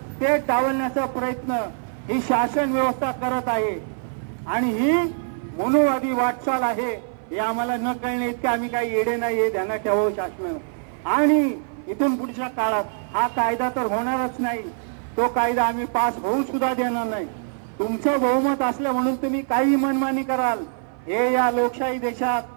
ते डावलण्याचा प्रयत्न ही शासन व्यवस्था करत आहे. आणि ही मनोवादी वाटचाल आहे हे आम्हाला न कळणे इतके आम्ही काही येडे नाही हे ध्यानात ठेवावं शासन. आणि इथून पुढच्या काळात हा कायदा तर होणारच नाही, तो कायदा आम्ही पास होऊ सुद्धा देणार नाही. तुमचं बहुमत असलं म्हणून तुम्ही काही मनमानी कराल हे या लोकशाही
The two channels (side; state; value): left; silent; 57 dB below the other